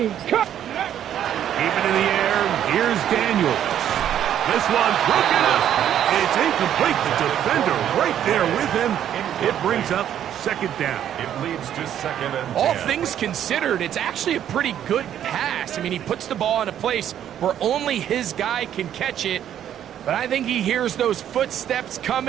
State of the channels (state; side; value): quieter; left; 10.4 dB